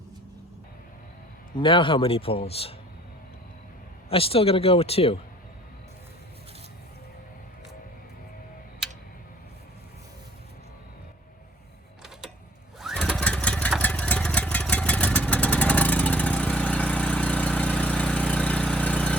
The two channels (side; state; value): both; normal; correlation 0.54